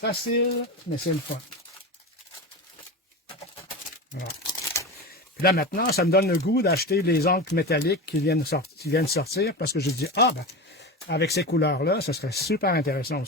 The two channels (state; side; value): normal; both; correlation 0.25